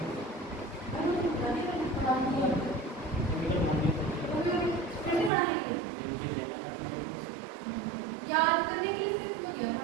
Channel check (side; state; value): left; drops out; at 5.3 s